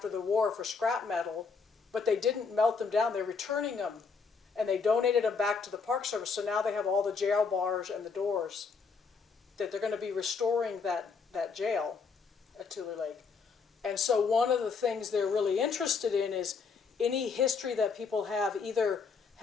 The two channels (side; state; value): right; quieter; 5.2 dB